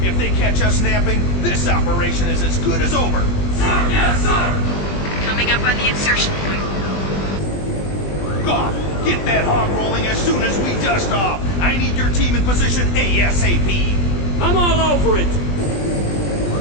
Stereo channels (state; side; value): late; right; 20 ms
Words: If they catch us napping, this operation is as good as over. Sir, yes, sir! Coming up on the insertion point. Goff, get that hog rolling as soon as we dust off. I need your team in position ASAP. I'm all over it.